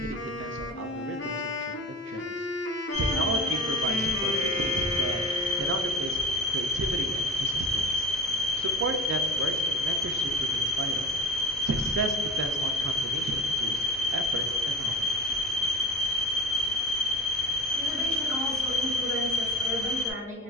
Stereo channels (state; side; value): normal; both; correlation 0.34